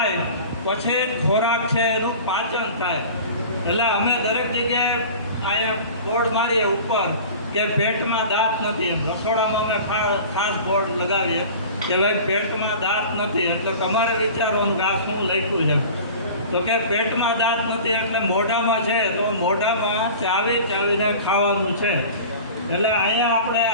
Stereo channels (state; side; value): inverted; both; correlation -0.39